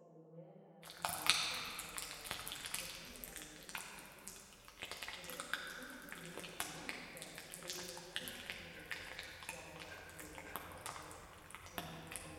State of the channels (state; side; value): identical; both; correlation 1.00